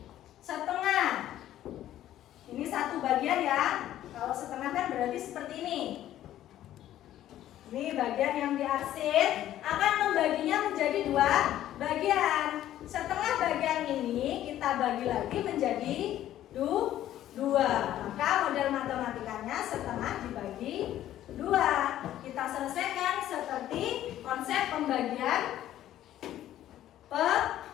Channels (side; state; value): right; quieter; 12.7 dB